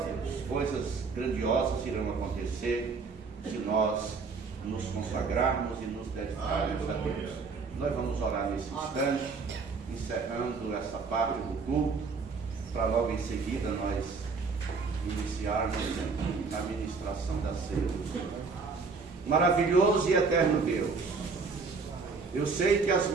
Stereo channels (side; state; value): left; quieter; 4.7 dB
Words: Deus. Coisas grandiosas irão acontecer se nós nos consagrarmos e nos dedicarmos a Deus. Nós vamos orar nesse instante, encerrando essa parte do culto, para logo em seguida nós iniciarmos a ministração da ceia. Maravilhoso e eterno Deus, eu sei que as